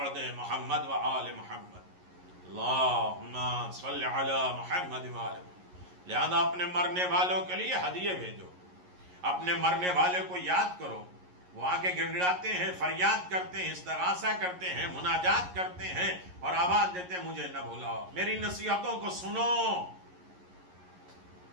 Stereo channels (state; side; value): late; left; 11 ms